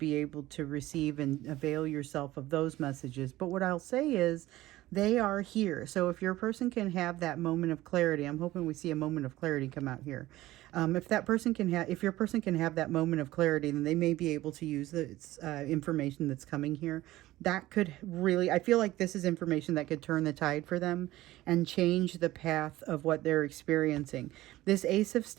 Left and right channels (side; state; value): left; quieter; 16.7 dB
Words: able to receive and avail yourself of those messages. But what I'll say is they are here. So if your person can have that moment of clarity, I'm hoping we see a moment of clarity come out here. If that person can have, if your person can have that moment of clarity, then they may be able to use the information that's coming here. That could really, I feel like this is information that could turn the tide for them and change the path of what they're experiencing. This Ace of